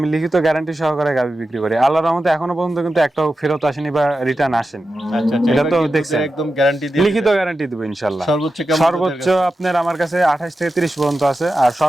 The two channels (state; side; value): normal; both; correlation 0.91